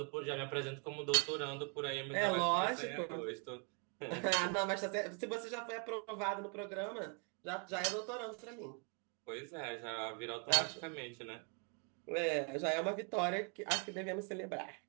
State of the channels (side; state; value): left; quieter; 38.0 dB